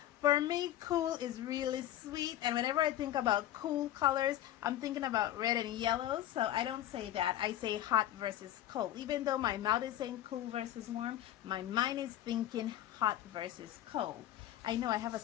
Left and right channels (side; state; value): right; quieter; 12.8 dB